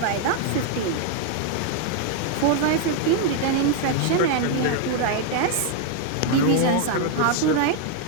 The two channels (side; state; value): both; different; correlation 0.00